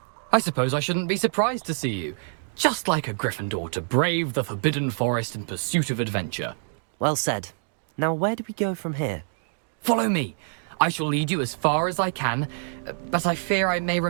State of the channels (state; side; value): silent; left; digital silence